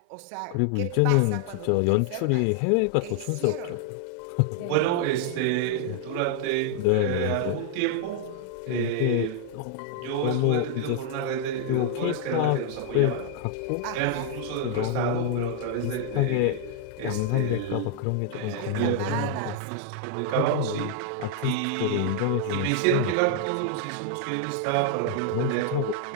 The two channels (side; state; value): both; different; correlation 0.00